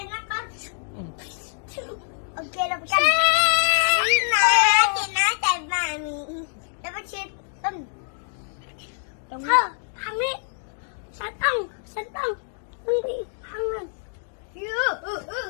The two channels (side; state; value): right; silent; digital silence